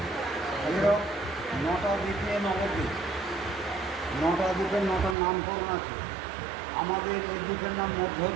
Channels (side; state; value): left; drops out; at 5.2 s